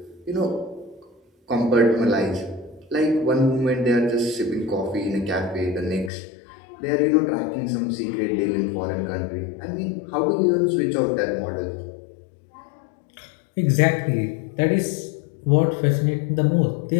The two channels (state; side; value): drops out; right; at 6.1 s